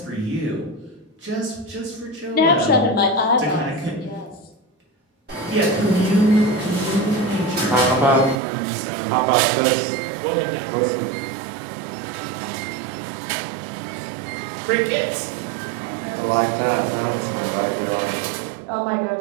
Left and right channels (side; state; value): left; drops out; at 8.3 s